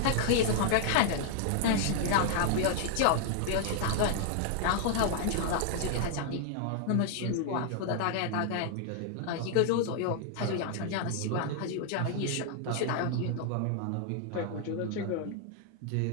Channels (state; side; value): different; both; correlation 0.00